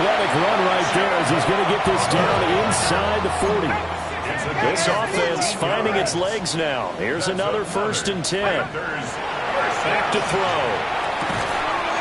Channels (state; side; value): identical; both; correlation 1.00